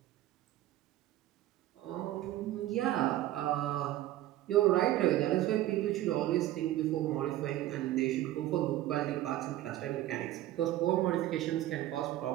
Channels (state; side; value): quieter; left; 14.4 dB